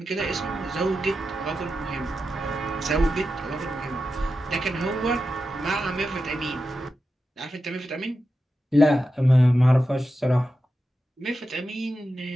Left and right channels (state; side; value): normal; both; correlation 0.90